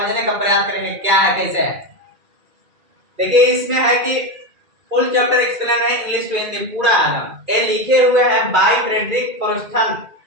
का प्रयास करेंगे क्या है कैसे है। देखिए इसमें है कि फुल चैप्टर एक्सप्लेन है, इंग्लिश टू हिंदी पूरा है ना। ये लिखे हुए हैं बाय फ्रेडरिक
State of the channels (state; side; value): late; left; 2.4 ms